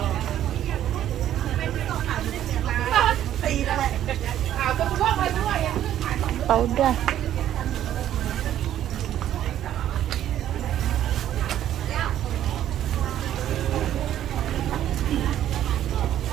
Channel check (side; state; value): left; quieter; 11.6 dB